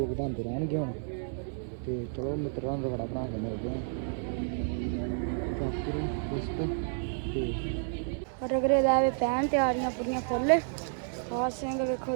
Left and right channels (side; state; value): left; silent; 57 dB below the other